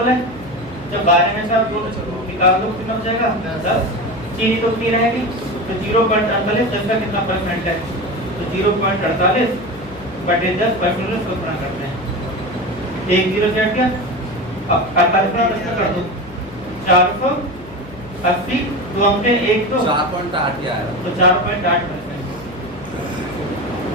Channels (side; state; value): left; noise; hum, 19 dB below the sound